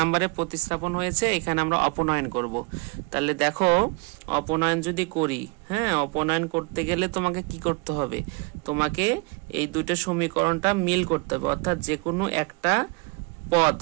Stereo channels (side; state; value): left; quieter; 29.4 dB